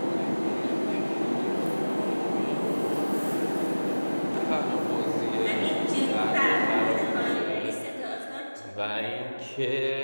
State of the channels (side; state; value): both; inverted; correlation -1.00